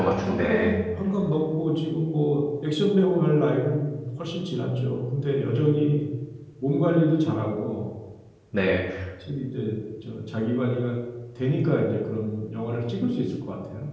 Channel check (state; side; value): identical; both; correlation 1.00